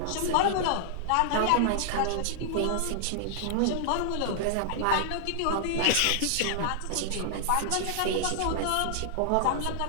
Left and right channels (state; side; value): different; both; correlation -0.01